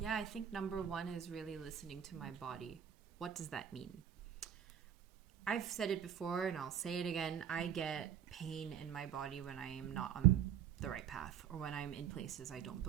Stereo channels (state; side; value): quieter; left; 9.2 dB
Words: I think number one is really listening to my body. What does that mean? I've said it before and I'll say it again. I get pain in my body when I am not on the right path, or when I'm in places I don't